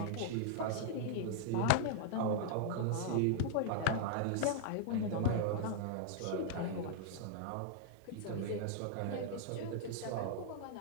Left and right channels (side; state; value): both; different; correlation -0.01